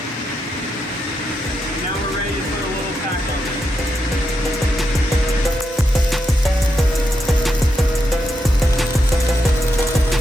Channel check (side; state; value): both; normal; correlation 0.83